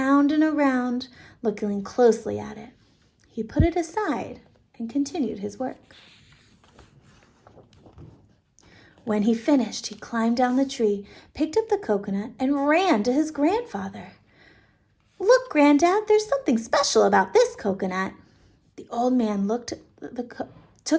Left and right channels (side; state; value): both; identical; correlation 1.00